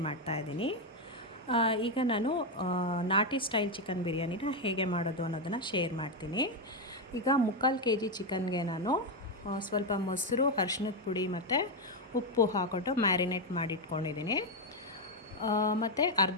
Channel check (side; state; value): both; normal; correlation 0.05